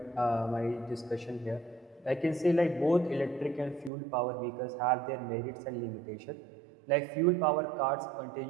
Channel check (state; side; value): drops out; left; at 3.9 s